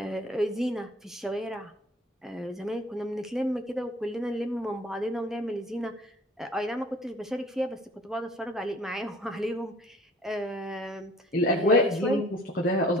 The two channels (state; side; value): normal; both; correlation 0.52